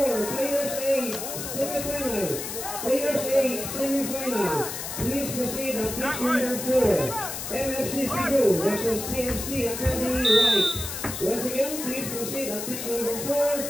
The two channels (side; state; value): left; noise; hiss, 6 dB below the sound